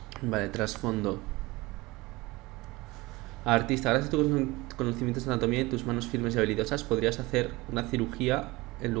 Vale, trasfondo. Artista, gracias a tus conocimientos de anatomía y tus manos firmes y habilidosas podrías hacer una cirugía en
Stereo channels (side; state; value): left; quieter; 21.7 dB